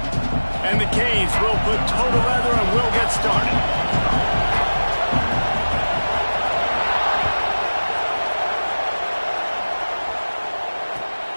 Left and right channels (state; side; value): inverted; both; correlation -1.00